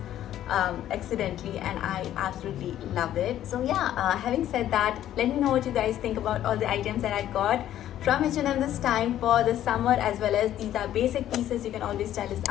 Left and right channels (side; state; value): right; quieter; 12.0 dB